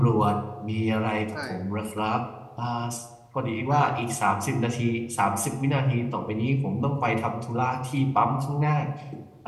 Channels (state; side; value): identical; both; correlation 1.00